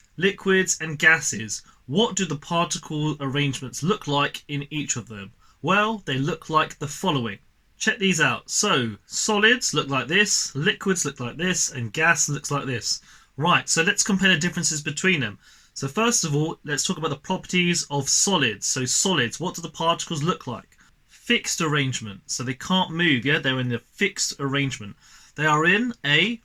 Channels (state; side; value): identical; both; correlation 1.00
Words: liquids and gases. What do the particle arrangements look like in each of them? Well, they look like the following. Check these out. So, solids look like this, liquids look like this, and gas looks like this. Right, so let's compare the differences between them. So first of all, let's talk about the properties of solids. So solids, what do the particles look like? Fixed arrangement. So they can't move, yeah? They're in a fixed arrangement. They are in a